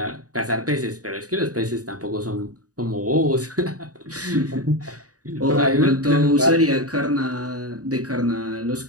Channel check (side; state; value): left; late; 0.67 ms